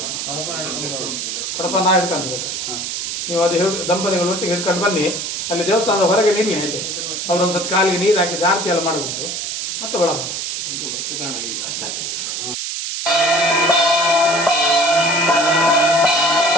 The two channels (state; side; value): noise; right; hiss, 4 dB below the sound